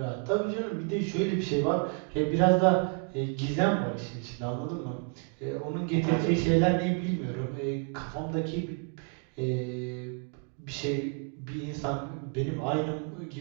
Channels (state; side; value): quieter; left; 39.6 dB